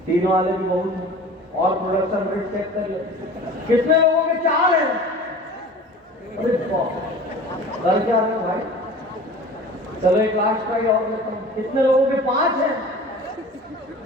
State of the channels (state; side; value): normal; both; correlation 0.41